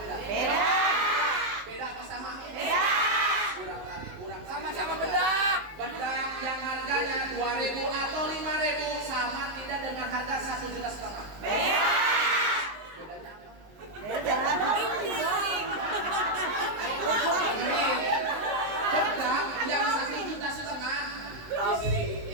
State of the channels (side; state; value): left; late; 19 ms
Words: Beda. Beda apa sama? Beda. Kurang tarik. Sama-sama bedak. Bedak yang harganya 2.000 atau 5.000 sama tidak dengan harga 1,5 juta? Beda. Bedanya apa? Beda. Dengerin. Bedak yang 1,5 juta